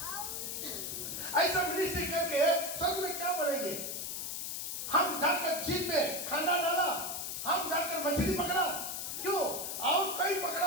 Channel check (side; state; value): left; noise; hiss, 4 dB below the sound